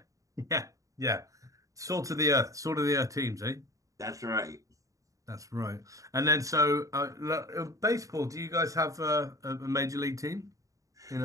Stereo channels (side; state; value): left; late; 0.16 ms